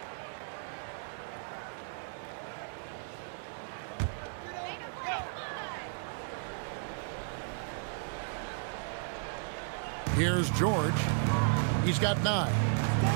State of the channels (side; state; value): left; silent; 55 dB below the other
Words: Here's George. He's got 9.